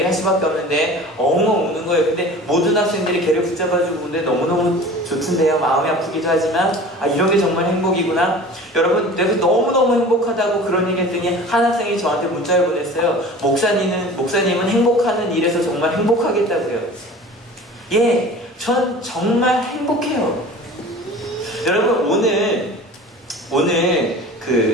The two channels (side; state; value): both; normal; correlation 0.40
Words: 할 수밖에 없는데 엉엉 우는 거예요. 근데 모든 학생들이 걔를 붙잡아주고 우는데 너무너무 좋던데요. 마음이 아프기도 하지만 이런 게 정말 행복이구나. 여러분, 내가 너무너무 행복하다고 그런 얘기 했더니 한 학생이 저한테 문자를 보냈어요. 목사님은 행복하는 일에서 정말 행복하겠다고요. 예, 전 정말 행복해요. 여러분, 오늘